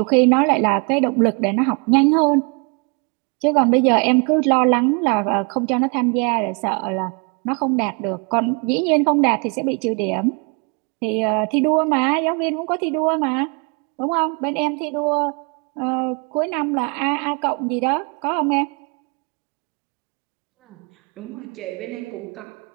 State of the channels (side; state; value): left; quieter; 33.6 dB